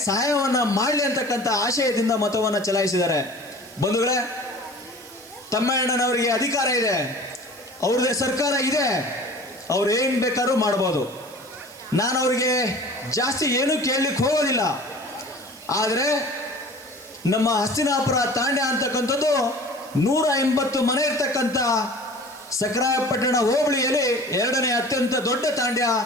ಸಹಾಯವನ್ನು ಮಾಡಲಿ ಅಂತಕ್ಕಂಥ ಆಶಯದಿಂದ ಮತವನ್ನು ಚಲಾಯಿಸಿದ್ದಾರೆ. ಬಂಧುಗಳೇ, ತಮ್ಮಣ್ಣನವರಿಗೆ ಅಧಿಕಾರ ಇದೆ, ಅವ್ರದ್ದೇ ಸರ್ಕಾರ ಇದೆ, ಅವ್ರು ಏನು ಬೇಕಾದ್ರೂ ಮಾಡ್ಬೋದು. ನಾನು ಅವರಿಗೆ ಜಾಸ್ತಿ ಏನೂ ಕೇಳಲಿಕ್ಕೆ ಹೋಗೋದಿಲ್ಲ. ಆದರೆ ನಮ್ಮ ಹಸ್ತಿನಾಪುರ ತಾಂಡ್ಯ ಅಂತಕ್ಕಂಥದ್ದು 180 ಮನೆ ಇರ್ತಕ್ಕಂಥ ಸಕ್ರಾಯಪಟ್ಟಣ ಹೋಬಳಿಯಲ್ಲಿ 2ನೇ ಅತ್ಯಂತ ದೊಡ್ಡ ತಾಂಡ್ಯ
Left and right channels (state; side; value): noise; right; hiss, 20 dB below the sound